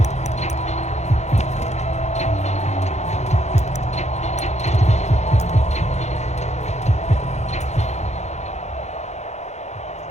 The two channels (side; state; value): right; late; 0.33 ms